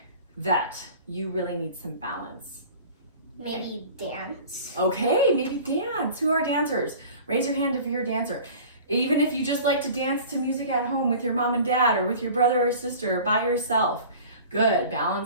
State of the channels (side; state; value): both; inverted; correlation -0.42